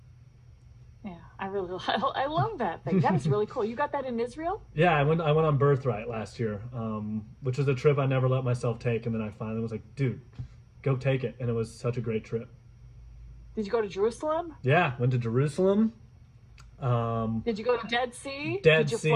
Yeah, I really, I love that thing. That is really cool. You got that in Israel? Yeah, I went on Birthright last year, which was a trip I never let myself take, and then I finally was like, dude, go take it, and it was such a great trip. Did you go to Jerusalem? Yeah, went to Jerusalem. Did you go to Dead Sea? Dead Did you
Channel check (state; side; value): identical; both; correlation 1.00